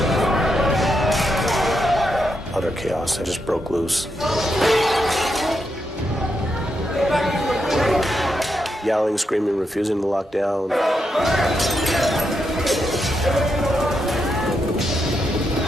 Utter chaos. They just broke loose. Yelling, screaming, refusing to lock down.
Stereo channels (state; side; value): normal; both; correlation 0.83